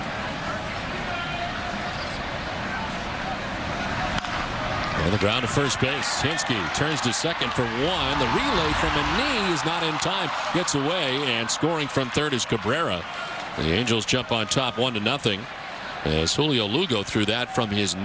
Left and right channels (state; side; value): identical; both; correlation 1.00